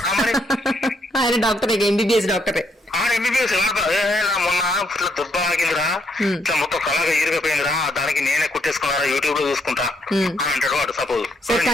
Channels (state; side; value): normal; both; correlation 0.74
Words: ఆయన డాక్టర్, MBBS డాక్టరే. MBBS మొన్న దుబ్బ ఆగిందిరా, ఇట్లా మొత్తం కళగా ఈరిగిపోయిందిరా, దానికి నేనే కుట్టేసుకున్నారా యూట్యూబ్ లో చూసుకుంటా అని అంటాడు వాడు. సపోజ్ సార్,